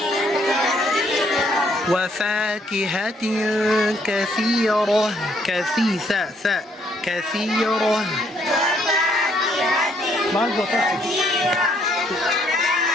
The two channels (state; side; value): normal; both; correlation 0.68